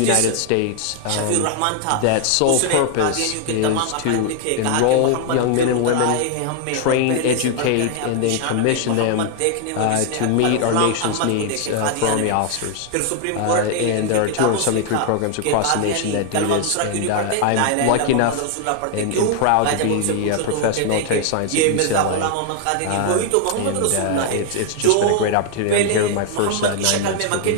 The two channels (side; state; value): both; different; correlation 0.00